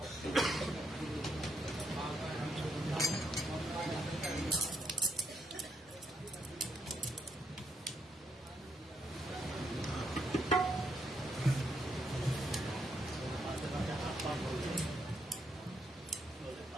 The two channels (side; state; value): both; normal; correlation 0.77